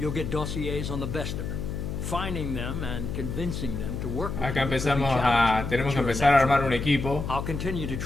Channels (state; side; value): noise; left; hum, 4 dB below the sound